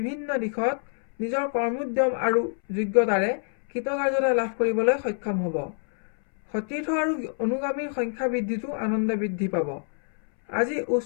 দিশত নিজৰ কৰ্মোদ্যম আৰু যোগ্যতাৰে কৃতকাৰ্যতা লাভ কৰিবলৈ সক্ষম হ'ব। সতীৰ্থ আৰু অনুগামীৰ সংখ্যা বৃদ্ধিতো আনন্দ বৃদ্ধি পাব। আজি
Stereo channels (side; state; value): right; silent; 61 dB below the other